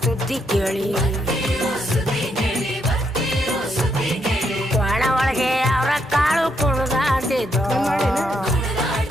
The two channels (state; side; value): normal; both; correlation 0.77